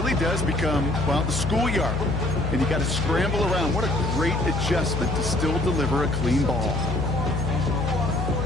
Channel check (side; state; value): left; noise; hum, 2 dB below the sound